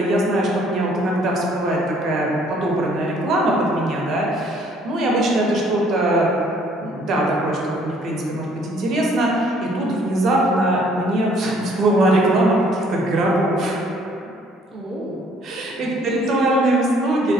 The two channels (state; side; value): normal; both; correlation 0.61